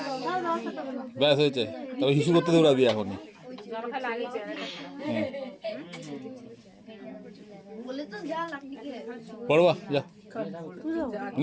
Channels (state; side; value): identical; both; correlation 1.00